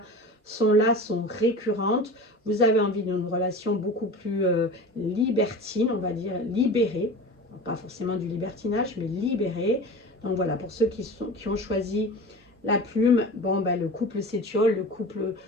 sont là, sont récurrentes. Vous avez envie d'une relation beaucoup plus libertine, on va dire libérée, pas forcément du libertinage mais libérée. Donc voilà, pour ceux qui ont choisi la plume, bon ben le couple s'étiole, le couple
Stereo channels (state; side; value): normal; both; correlation 0.34